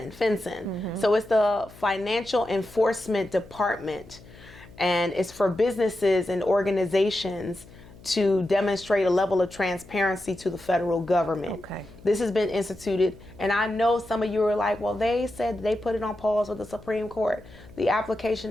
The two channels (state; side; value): noise; left; hum, 21 dB below the sound